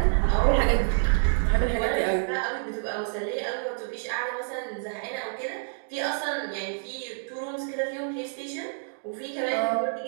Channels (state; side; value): silent; left; digital silence